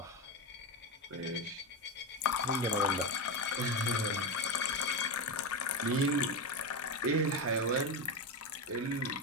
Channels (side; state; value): both; normal; correlation 0.14